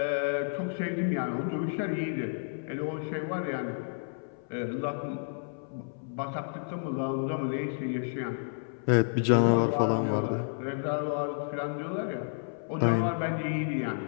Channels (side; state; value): right; silent; 57 dB below the other